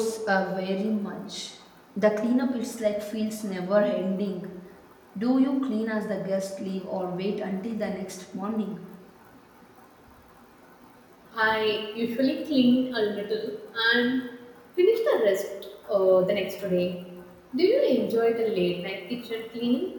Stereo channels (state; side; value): identical; both; correlation 1.00